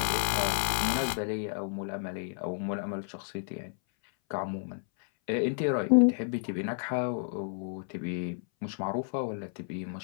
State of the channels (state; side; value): silent; right; 57 dB below the other